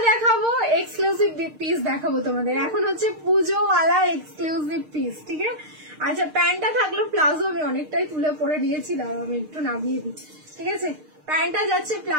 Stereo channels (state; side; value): late; left; 6.5 ms